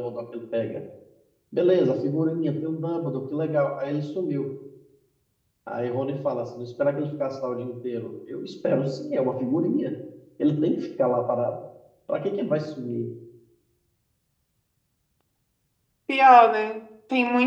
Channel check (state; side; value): identical; both; correlation 1.00